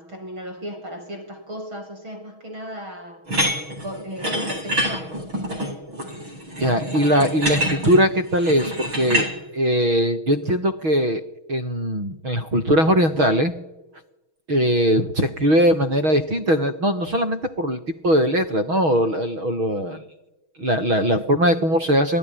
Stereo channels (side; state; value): left; late; 6.3 ms